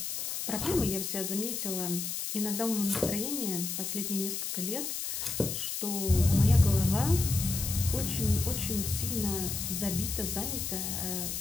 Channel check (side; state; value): left; noise; hiss, 3 dB below the sound